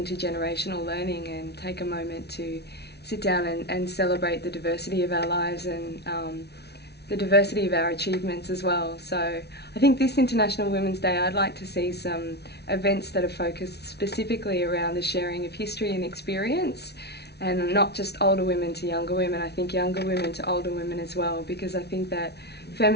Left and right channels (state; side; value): late; right; 0.49 ms